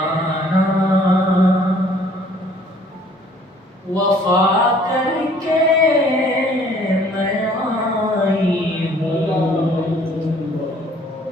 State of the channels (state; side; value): normal; both; correlation 0.58